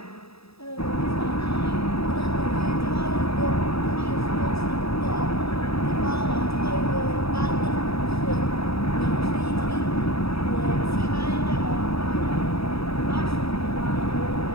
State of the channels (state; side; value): late; right; 0.77 ms